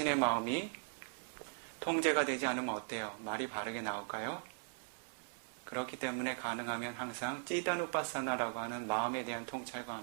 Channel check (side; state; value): left; silent; 52 dB below the other